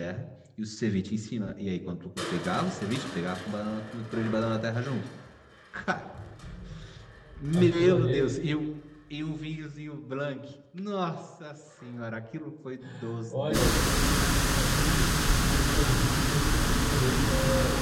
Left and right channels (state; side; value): identical; both; correlation 1.00